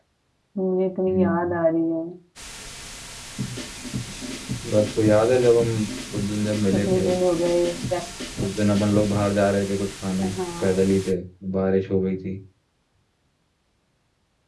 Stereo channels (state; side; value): identical; both; correlation 1.00